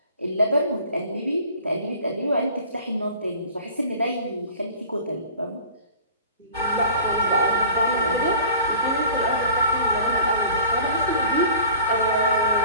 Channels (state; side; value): inverted; both; correlation -0.45